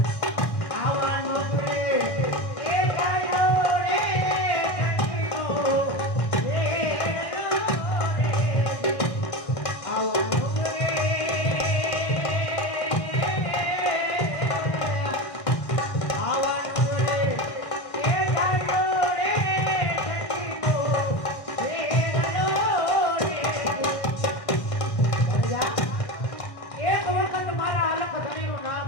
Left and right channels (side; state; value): right; late; 1.1 ms